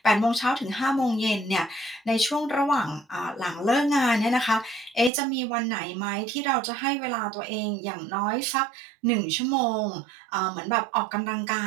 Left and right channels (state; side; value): drops out; left; at 5.1 s